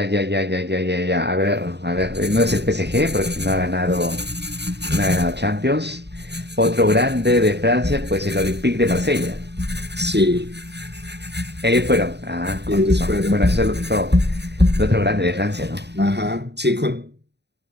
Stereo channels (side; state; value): left; late; 0.50 ms